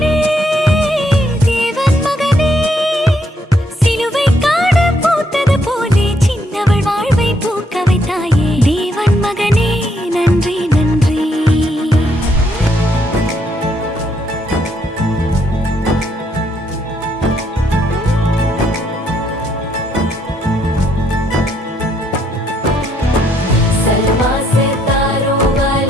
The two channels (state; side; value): normal; both; correlation 0.73